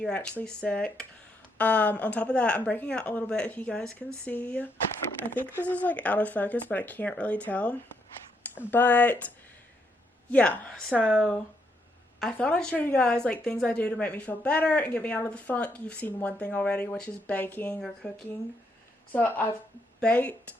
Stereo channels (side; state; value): both; normal; correlation 0.76